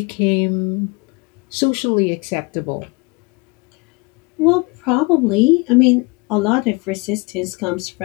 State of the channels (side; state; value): right; quieter; 27.9 dB